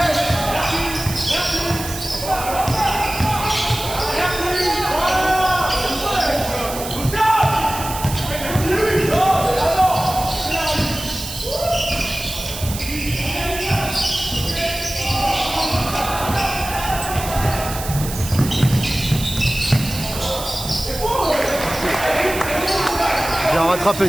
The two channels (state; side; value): noise; right; hiss, 9 dB below the sound